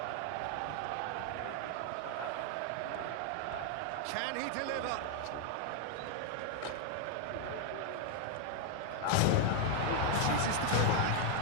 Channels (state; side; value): different; both; correlation 0.00